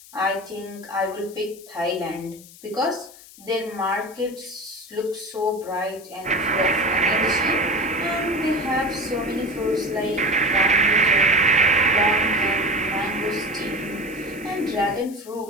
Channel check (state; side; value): noise; left; hiss, 20 dB below the sound